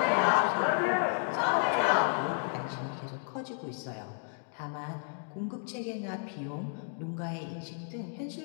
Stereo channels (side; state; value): right; silent; 56 dB below the other